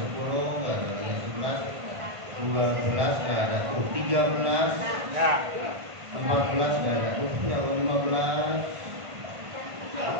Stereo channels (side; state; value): left; late; 1.5 ms